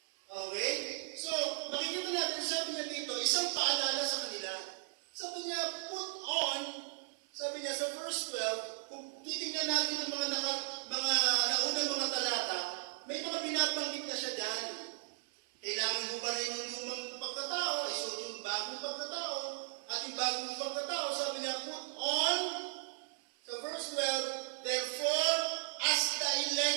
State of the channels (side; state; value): left; silent; 53 dB below the other